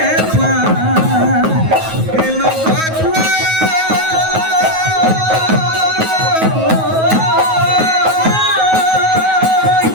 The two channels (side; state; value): left; late; 9.3 ms